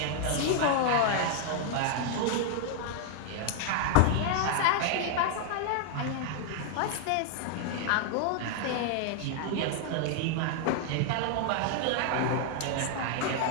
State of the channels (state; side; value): different; both; correlation 0.00